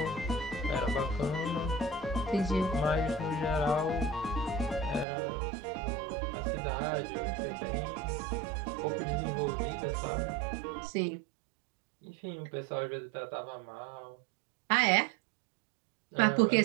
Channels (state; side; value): drops out; left; at 5.1 s